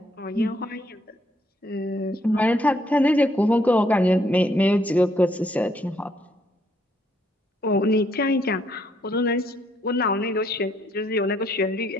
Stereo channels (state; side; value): normal; both; correlation 0.70